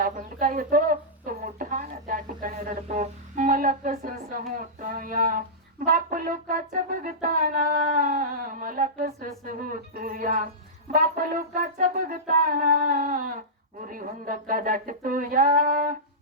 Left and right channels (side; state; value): both; normal; correlation -0.16